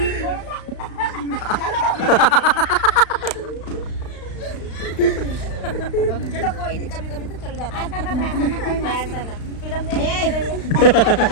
चलो कोई नहीं, कभी कभी तो चल जाता है। फिल्म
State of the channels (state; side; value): late; right; 35 ms